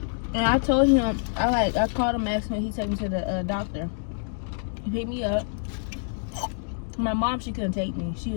And I told him, I called him, asked him, he took me to the doctor. He picked me up. My mom, she couldn't take me. She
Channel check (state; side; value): silent; right; digital silence